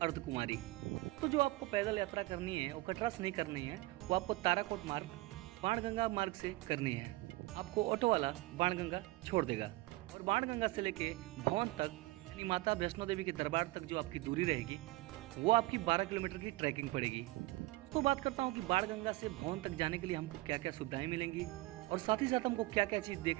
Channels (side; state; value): left; quieter; 20.2 dB